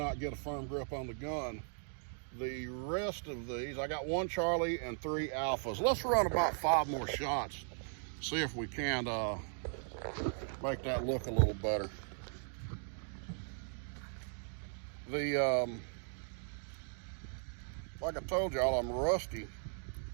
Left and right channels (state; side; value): silent; left; 53 dB below the other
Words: get a firm grip on the gun. The rest of these, I got 1 Charlie and 3 Alphas. Let's run about 5 more shots. See if we can make that look a little better. Like I told y'all, I'm rusty.